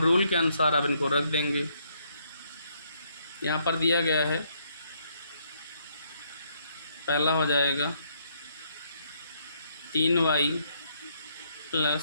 के अनुसार अब इनको रख देंगे। यहाँ पर दिया गया है, पहला हो जाएगा 3y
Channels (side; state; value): both; inverted; correlation -0.71